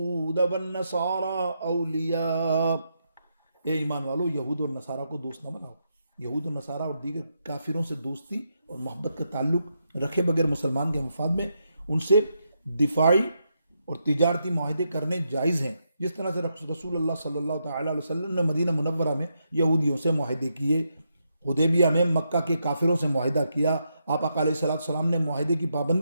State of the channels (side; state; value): both; inverted; correlation -0.82